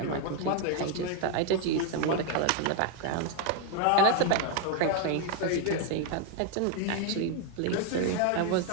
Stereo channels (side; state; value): both; different; correlation 0.01